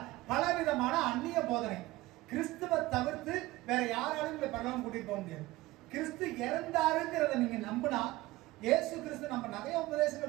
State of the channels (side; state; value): left; quieter; 18.8 dB